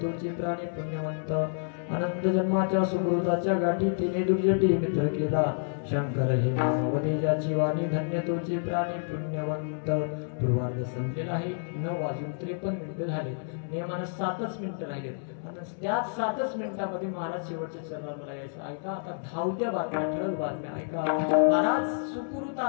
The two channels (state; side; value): silent; right; 59 dB below the other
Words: तुझे प्राणी पुण्यवंत अनंत जन्माच्या सुकृताच्या गाठी तिने दुर्जटी मित्र केला शंकर हे नाम वदे ज्याची वाणी धन्य तुझे प्राणी पुण्यवंत पूर्वार्ध संपलेला आहे 9:53 मिनिटं झाले नियमानं 7च मिनिटं राहिलेत आता त्याच 7च मिनिटांमध्ये महाराज शेवटच्या चरणाला यायचं ऐका आता धावत्या बातम्या ठळक बातम्या ऐका महाराज